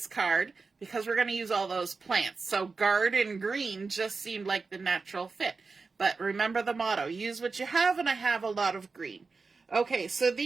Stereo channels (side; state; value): left; quieter; 4.3 dB